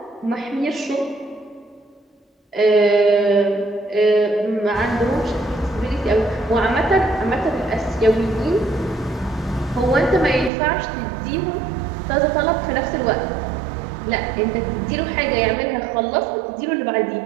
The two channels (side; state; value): left; drops out; at 10.5 s